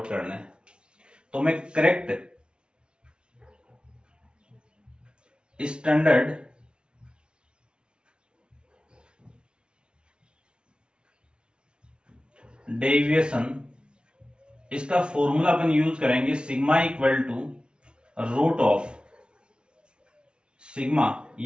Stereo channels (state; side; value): late; left; 0.056 ms